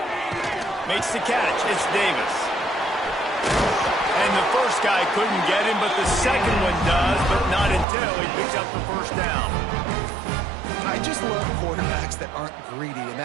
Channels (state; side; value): drops out; left; at 7.9 s